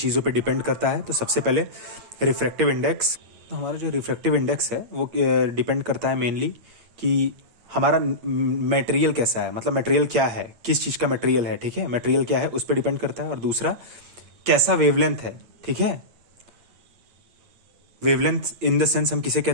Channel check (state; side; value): late; left; 8.6 ms